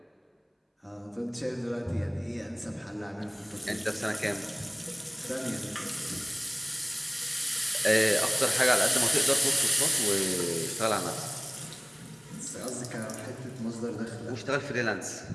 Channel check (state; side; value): identical; both; correlation 1.00